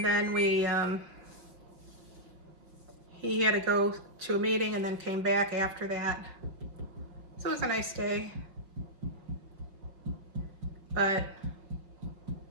then he had to go to a meeting and then came back after that. So it was a nice day, but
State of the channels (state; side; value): late; left; 5.9 ms